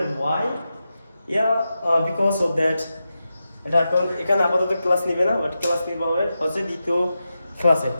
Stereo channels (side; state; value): both; inverted; correlation -0.91